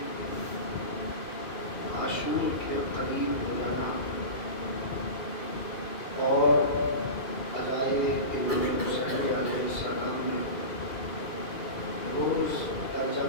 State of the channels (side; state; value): right; late; 2.4 ms